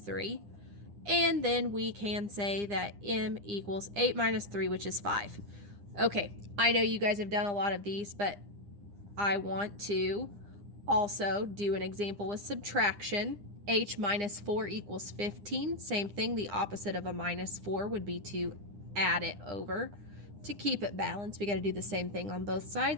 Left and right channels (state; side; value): late; left; 9.9 ms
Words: And then we can say that m equals 8 minus 3, which is 5. Okay, I know you guys have done a lot of these, but I want to also do an example with subtraction. H minus 4 equals 15. Same thing, the opposite of a minus 4 would be to add it over. To keep it balanced, we got to do the same thing on both